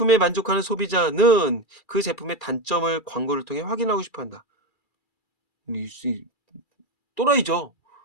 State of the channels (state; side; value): late; right; 2.4 ms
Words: 만족하는 소비자는 그 제품의 단점을 광고를 통해 확인하고 싶어 한다. 또라이죠.